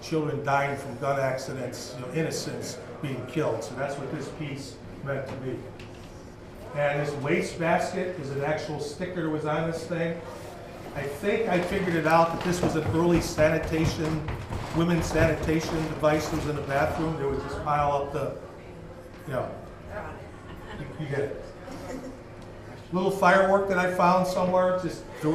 Children dying from gun accidents, innocents being killed. So that's what this piece meant to me. And this waste basket is an actual sticker that was on this thing. I think I figured it out that this was an early sanitation, women's sanitation device that was in the bathroom. They would just pile up the, you get it. Little firework that I found somewhere, just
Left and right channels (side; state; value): both; identical; correlation 1.00